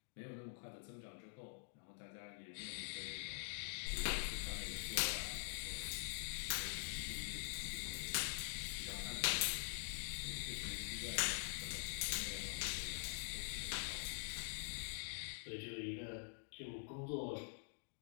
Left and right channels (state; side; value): silent; right; digital silence